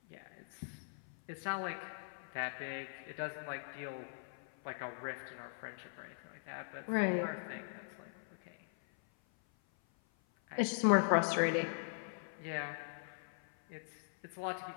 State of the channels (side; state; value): right; silent; 51 dB below the other